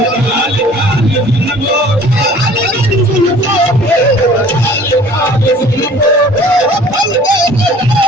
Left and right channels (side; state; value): both; normal; correlation 0.50